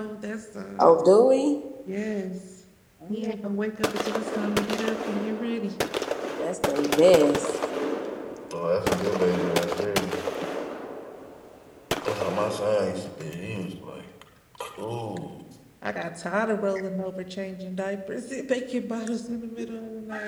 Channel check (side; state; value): both; identical; correlation 1.00